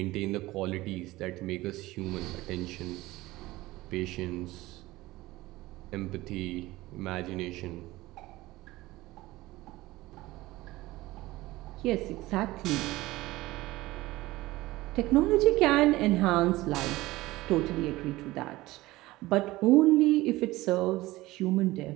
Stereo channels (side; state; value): left; quieter; 18.6 dB